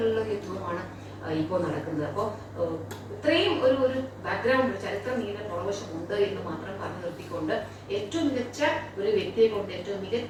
യുദ്ധവുമാണ് ഇപ്പോൾ നടക്കുന്നത്. അപ്പോൾ ഇത്രയും ഒരു ബാക്ക്ഗ്രൗണ്ട്, ചരിത്രം നീണ്ട പുറവശമുണ്ട് എന്ന് മാത്രം പറഞ്ഞു നിർത്തിക്കൊണ്ട് ഏറ്റവും മികച്ച ഒരു വ്യക്തിയെ കൊണ്ട് ഏറ്റവും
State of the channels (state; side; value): identical; both; correlation 1.00